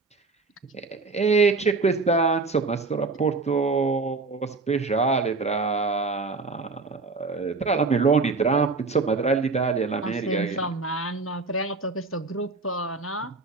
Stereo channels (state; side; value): quieter; left; 4.0 dB